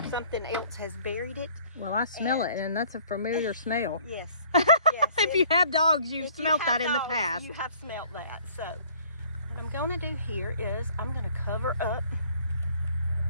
Something else has buried it. Well, I smell it, and that's a familiar smell. Yes. If you have dogs, you've smelled that in the past. You have smelled that. So what I'm going to do here is I'm going to cover up.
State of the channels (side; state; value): both; inverted; correlation -0.56